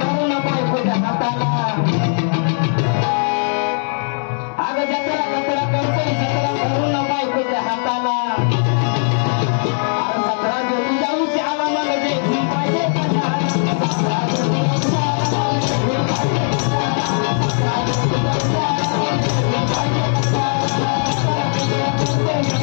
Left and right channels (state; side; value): silent; right; digital silence